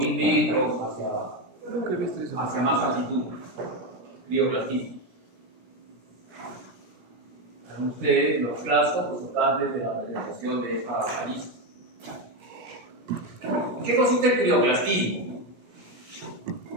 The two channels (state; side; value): late; left; 17 ms